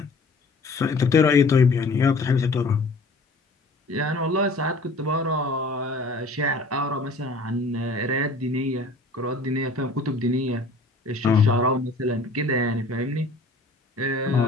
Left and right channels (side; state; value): right; quieter; 3.0 dB